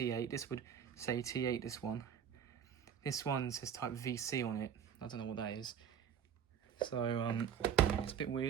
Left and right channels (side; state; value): left; quieter; 8.3 dB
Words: This would say T8, this one. This one says type VC on it. I don't know what that is. So it's a bit